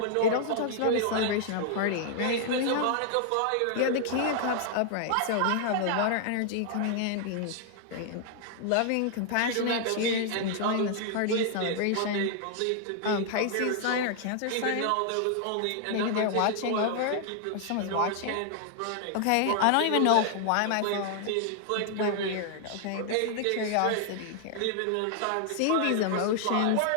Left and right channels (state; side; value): different; both; correlation 0.00